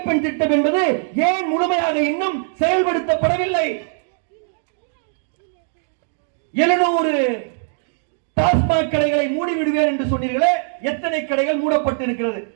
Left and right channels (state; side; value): silent; left; digital silence